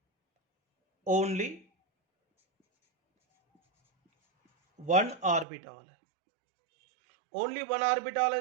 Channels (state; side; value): drops out; left; at 5.5 s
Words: ओनली 1 ऑर्बिटल है। ओनली 1 ऑर्बिटल